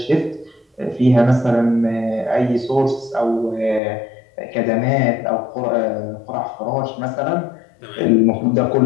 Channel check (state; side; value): drops out; right; at 3.8 s